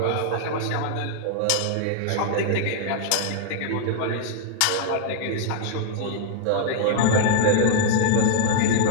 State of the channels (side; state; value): both; different; correlation -0.01